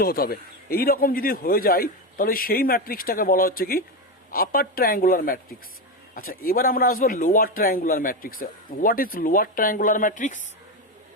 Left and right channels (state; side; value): normal; both; correlation 0.14